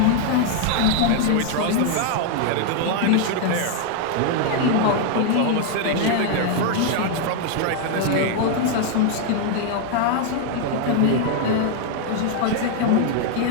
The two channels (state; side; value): different; both; correlation 0.00